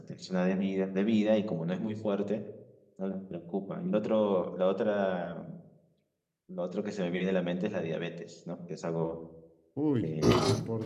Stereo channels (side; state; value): both; identical; correlation 1.00